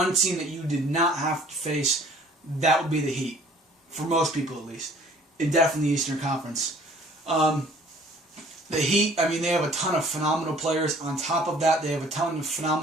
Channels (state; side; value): normal; both; correlation 0.54